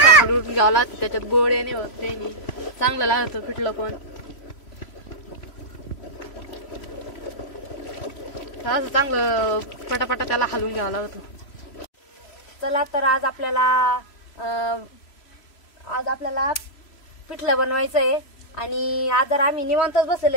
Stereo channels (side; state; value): right; late; 3.0 ms